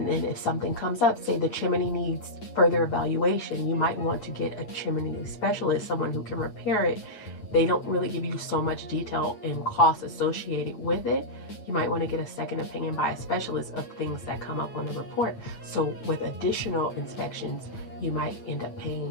then if something comes up, say the chimney needs further evaluation, you might want to get a chimney specialist, someone who can repair it. They don't really give you so much detail and cost associated with it. You might want to get a second opinion by a specialist of things that come up on the report. So with additional inspections, you might end up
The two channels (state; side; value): late; right; 9.0 ms